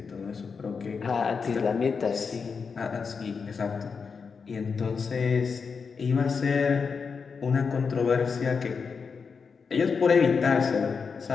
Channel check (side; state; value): right; quieter; 5.5 dB